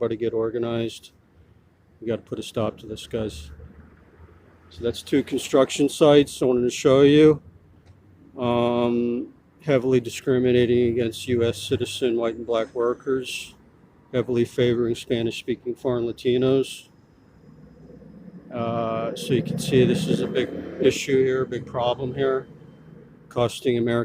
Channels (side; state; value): both; identical; correlation 1.00